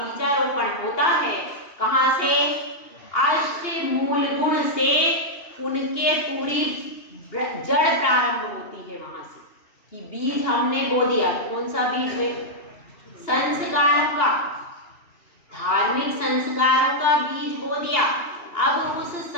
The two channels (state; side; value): late; right; 2.8 ms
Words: होता है कहाँ से? अष्ट मूल गुण से उनके पूरी जड़ प्रारंभ होती है वहां से, कि बीज हमने बो दिया। कौन सा बीज है? संस्कारों का, धार्मिक संस्कारों का बीज बो दिया। अब उस